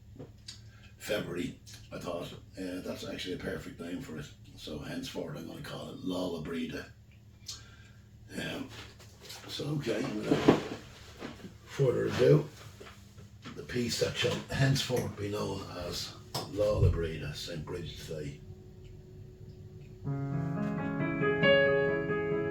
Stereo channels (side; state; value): both; identical; correlation 1.00